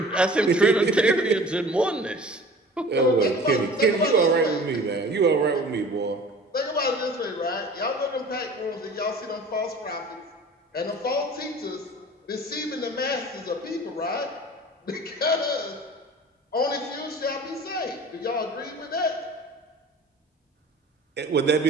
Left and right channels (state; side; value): normal; both; correlation 0.43